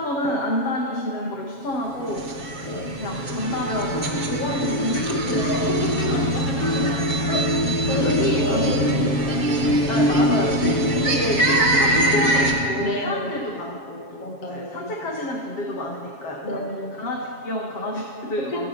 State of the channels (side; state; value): right; late; 7.3 ms